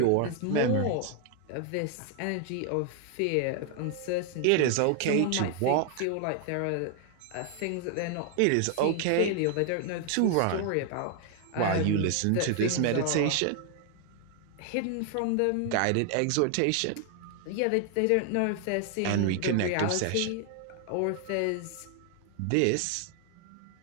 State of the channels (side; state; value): both; different; correlation 0.00